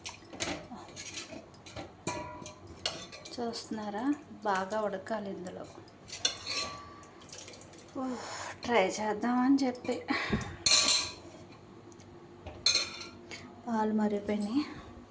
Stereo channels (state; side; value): identical; both; correlation 1.00